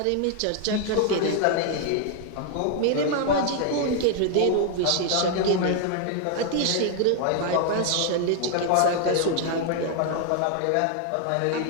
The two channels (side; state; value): both; different; correlation 0.00